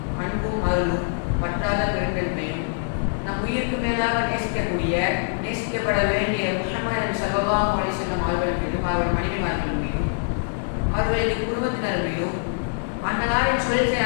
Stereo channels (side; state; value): right; silent; digital silence